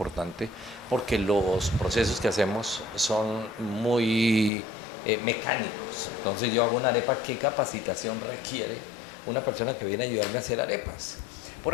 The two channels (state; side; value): drops out; right; at 4.5 s